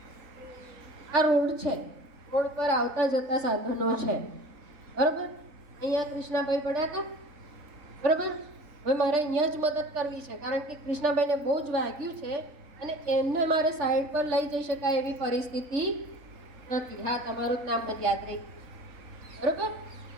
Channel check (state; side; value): late; left; 3.8 ms